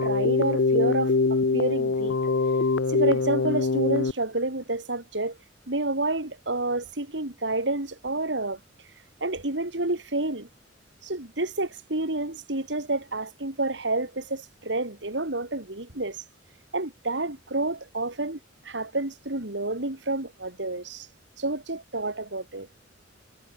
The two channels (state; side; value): normal; both; correlation -0.18